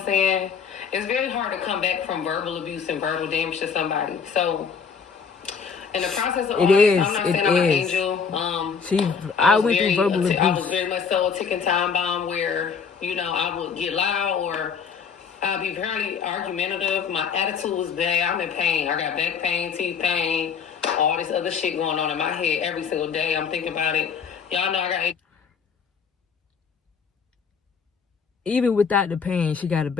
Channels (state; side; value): quieter; right; 6.1 dB